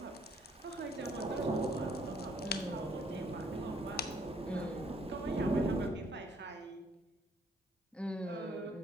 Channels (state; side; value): normal; both; correlation 0.65